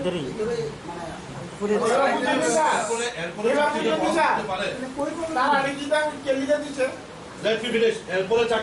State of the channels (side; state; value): both; identical; correlation 1.00